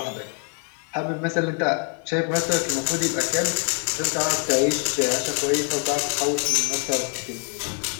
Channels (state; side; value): quieter; right; 39.2 dB